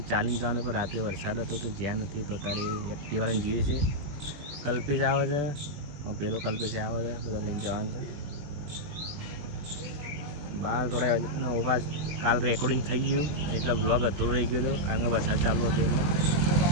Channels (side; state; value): left; late; 21 ms